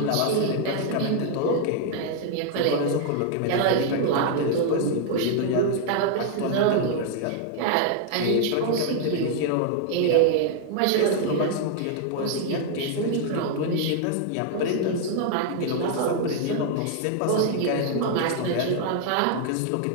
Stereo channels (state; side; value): different; both; correlation 0.00